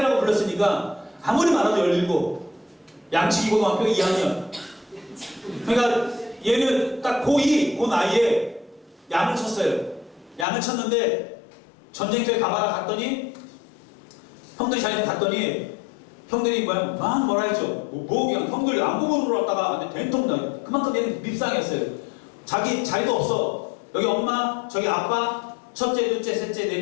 불렀으니까 아무리 많아도 17, 양치기 고등학교 2학년. 그러니까 얘는 딱 고2, 그 나이에 양을 쳤어요. 양을 쳤는데 전쟁터에 가봐라 갔더니 형들이 자기네 갔더니 형들이 뭐라 했죠. 그냥 형들 안부모로 왔다가 된통 나 그만큼 얘는 밉상했어요. 자기도 없어. 여기 엄마, 저기 아빠, 첫째, 둘째, 셋째,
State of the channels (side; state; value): right; drops out; at 10.5 s